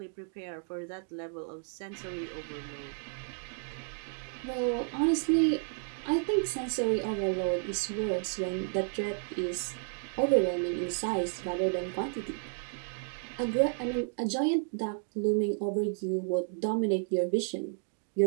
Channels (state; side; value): silent; left; 56 dB below the other